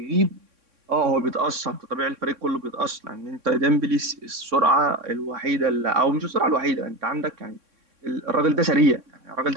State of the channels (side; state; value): left; late; 3.6 ms